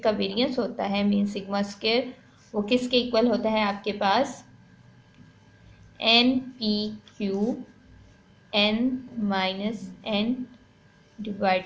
का वेरिएंस होता है मीन सिग्मा स्क्वायर वो किसके इक्वल होता है, आपके पास N P Q N minus N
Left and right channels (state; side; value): identical; both; correlation 1.00